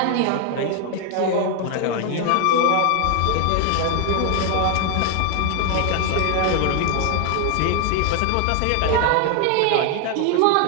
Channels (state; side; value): different; both; correlation 0.01